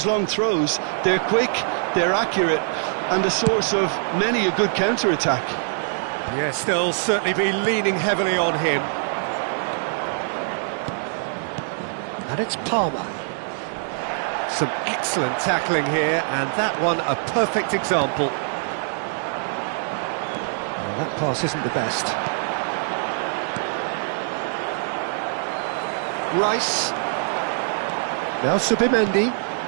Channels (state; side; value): silent; left; digital silence